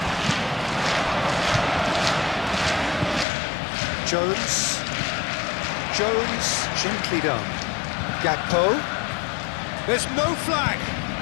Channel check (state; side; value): drops out; right; at 3.2 s